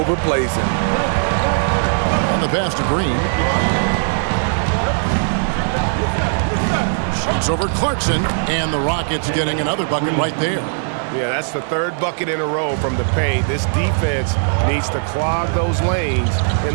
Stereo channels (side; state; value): left; silent; digital silence